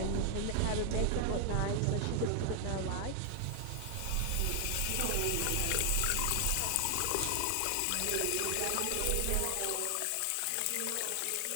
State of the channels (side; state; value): both; different; correlation 0.00